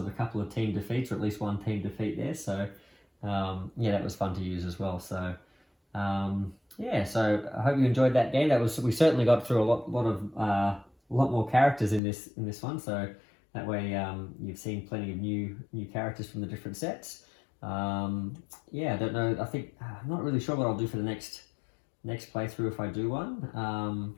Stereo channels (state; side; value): drops out; right; at 12.0 s